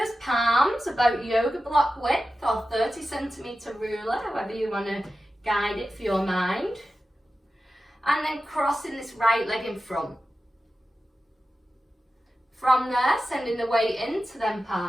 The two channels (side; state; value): both; normal; correlation 0.93